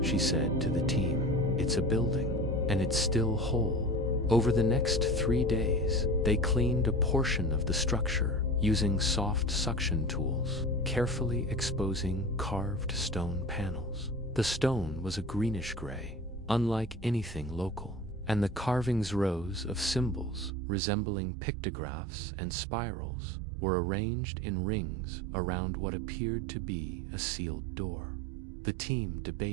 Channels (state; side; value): drops out; left; at 20.5 s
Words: she said to the team. "It's a building, and it's still whole." Over the next 3 days, they cleaned a portion of the structure using soft suction tools, carefully exposing carved stone panels. The stone was a greenish gray, unlike anything local, and the carvings, rows of symbols resembling pictographs and spirals, were arranged in rings around what appeared to be a sealed door. The team